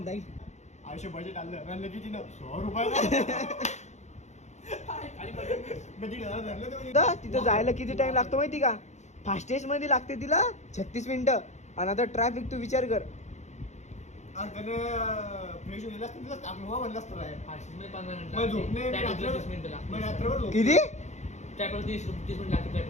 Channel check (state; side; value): late; right; 0.33 ms